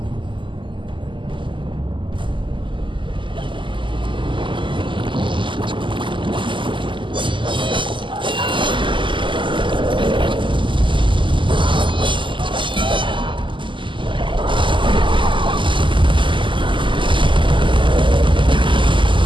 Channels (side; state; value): left; late; 0.24 ms